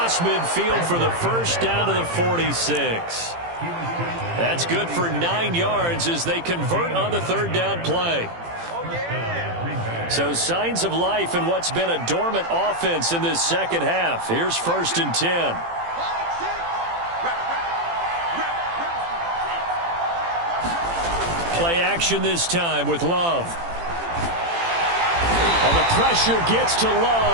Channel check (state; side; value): late; left; 18 ms